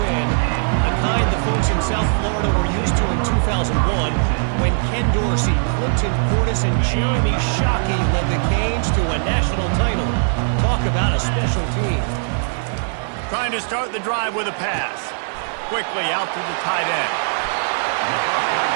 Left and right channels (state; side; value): silent; left; 56 dB below the other